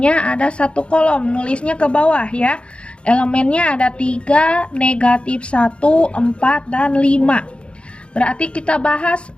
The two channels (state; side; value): late; right; 0.058 ms